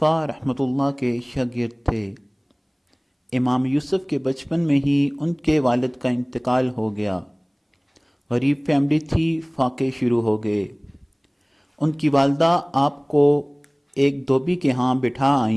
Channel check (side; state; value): both; identical; correlation 1.00